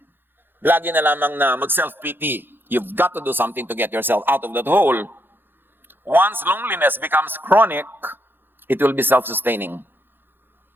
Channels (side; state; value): left; late; 0.099 ms